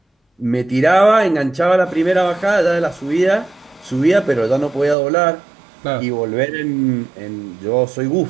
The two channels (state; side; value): drops out; left; at 5.0 s